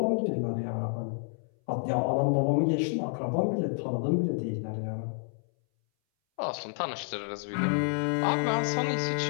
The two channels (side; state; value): right; silent; 58 dB below the other